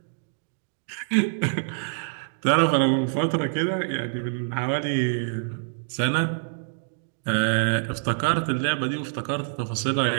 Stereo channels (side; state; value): left; silent; digital silence